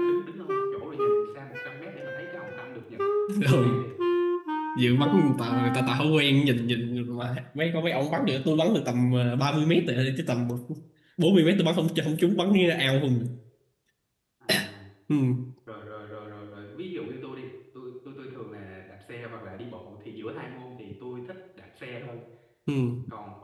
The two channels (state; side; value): identical; both; correlation 1.00